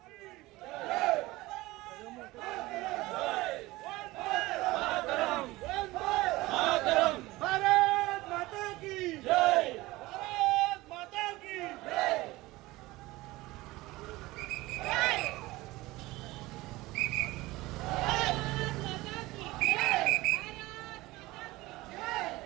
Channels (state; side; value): quieter; left; 19.6 dB